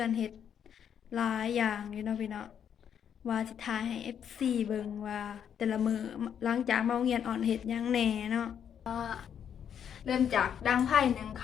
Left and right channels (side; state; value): right; quieter; 8.5 dB